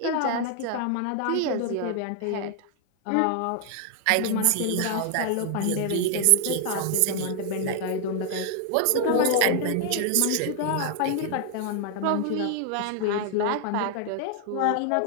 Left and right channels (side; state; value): both; different; correlation 0.00